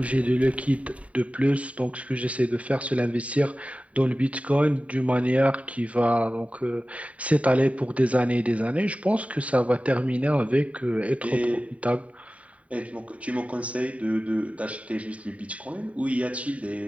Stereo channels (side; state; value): left; late; 0.067 ms